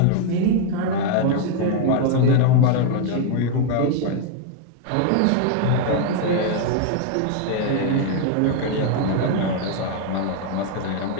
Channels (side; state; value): both; different; correlation 0.00